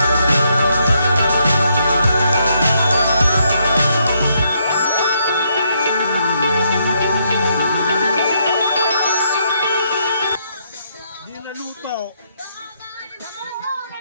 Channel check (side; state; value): both; inverted; correlation -0.75